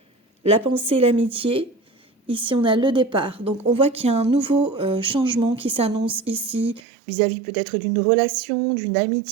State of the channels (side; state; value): left; drops out; at 6.8 s